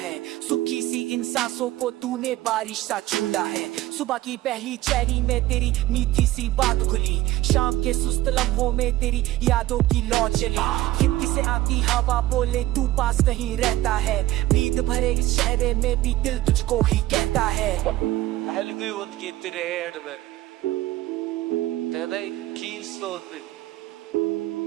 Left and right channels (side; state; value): left; quieter; 15.8 dB